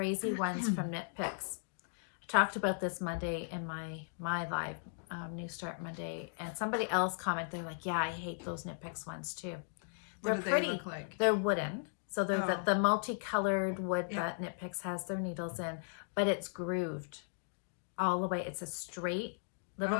ones from Knit Picks. I talked about this Monday in my live New Start Monday, and somebody else commented, they're like, yeah, I hate those Knit Picks ones too. What do They're they look like? They're wooden. So they're Oh. the multicolored wood Yeah. that Knit Picks has their needles in, but it's grooved all the way. It's a straight little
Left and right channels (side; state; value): right; silent; digital silence